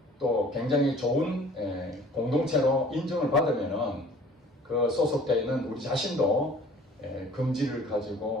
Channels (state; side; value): normal; both; correlation 0.50